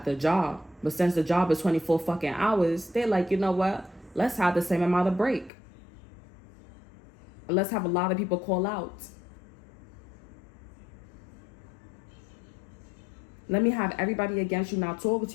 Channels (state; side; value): drops out; right; at 5.5 s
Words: the job. But since the job is 24 fucking hours, they're like, you know what? Let's have the same amount of break. Let's have a lot of people call out. Let me have everybody against you not talking